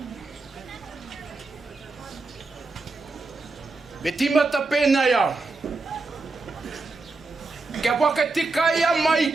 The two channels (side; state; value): left; quieter; 3.7 dB